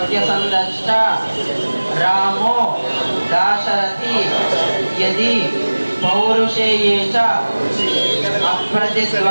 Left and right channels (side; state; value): both; inverted; correlation -1.00